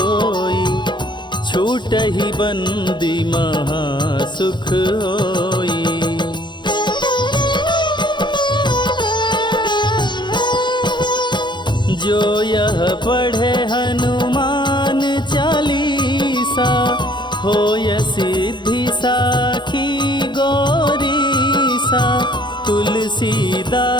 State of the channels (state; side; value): late; right; 0.22 ms